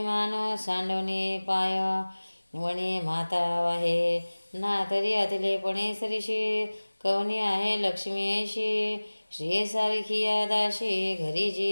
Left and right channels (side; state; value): both; inverted; correlation -1.00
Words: सांडवणे पाय, वणे माता वाहे, ना तरी अतिलेपणे सरीशी, कवनी आहे लक्ष्मी ऐशी, श्री सारखी दाशी, घरी